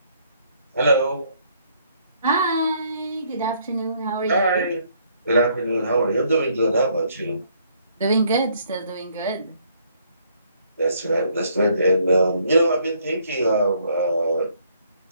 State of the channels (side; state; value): both; inverted; correlation -0.67